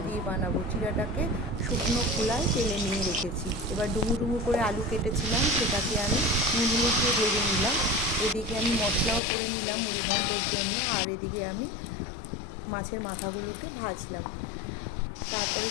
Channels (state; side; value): drops out; right; at 9.2 s